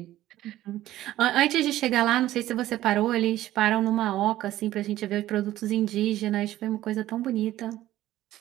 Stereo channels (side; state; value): left; quieter; 14.4 dB